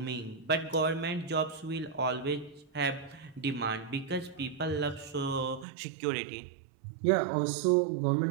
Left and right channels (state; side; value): drops out; left; at 5.7 s